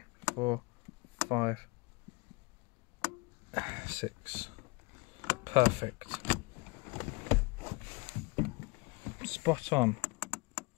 4, 5, 6. Perfect. Spot on.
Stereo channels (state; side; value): quieter; right; 26.8 dB